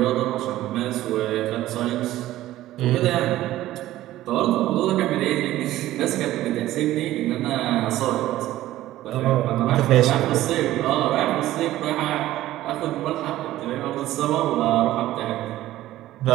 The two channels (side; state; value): left; quieter; 14.9 dB